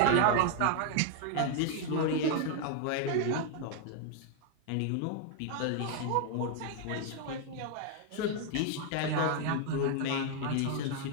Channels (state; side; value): different; both; correlation 0.00